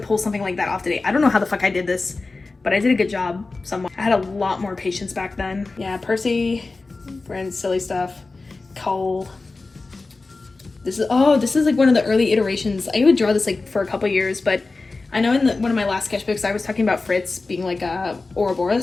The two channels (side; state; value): right; quieter; 3.6 dB